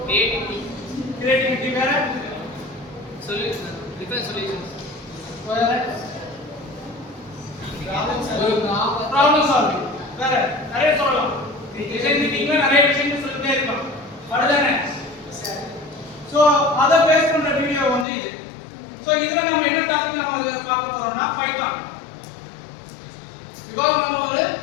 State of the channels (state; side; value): drops out; right; at 18.1 s